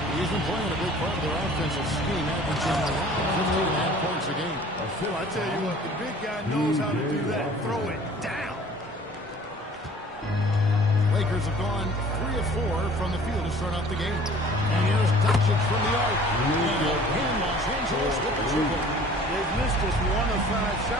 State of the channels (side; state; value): both; normal; correlation 0.49